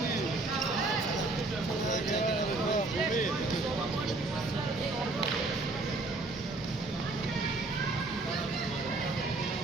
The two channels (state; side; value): quieter; left; 3.2 dB